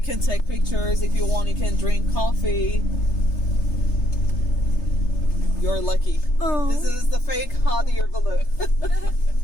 can take pictures if you want. You can drink coffee. You're lucky. Oh. This is the fake hot air balloon.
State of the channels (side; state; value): right; late; 3.3 ms